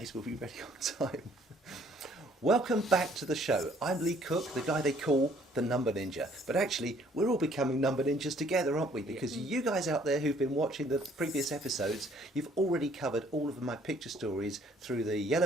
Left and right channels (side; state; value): both; normal; correlation 0.61